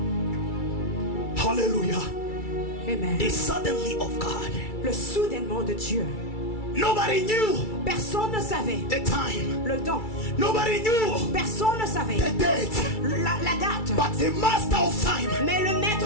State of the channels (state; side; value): late; right; 2.3 ms